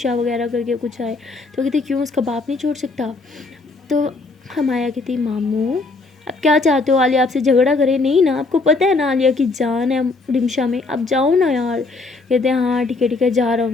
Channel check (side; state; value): right; quieter; 3.7 dB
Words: وغیرہ کر کے کچھ آئے، تو کہتے کیوں اس کا باپ نہیں چھوڑ سکتا؟ تو ہمایا کہتی ماموں اب کیا چاہتے ہو عالیہ آپ سے جھگڑا کرے؟ نہیں نا، آپ کو پتہ ہے نا عالیہ کی جان ہے رمشا میں، اب جاؤ نا یار۔ کہتے ہیں ہاں ٹھیک ہے جا رہا